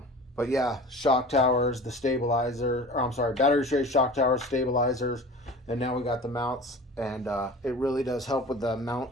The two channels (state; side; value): normal; both; correlation 0.39